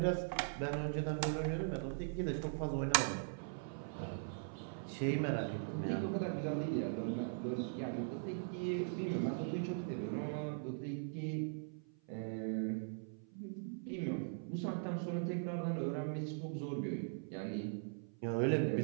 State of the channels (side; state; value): left; silent; 51 dB below the other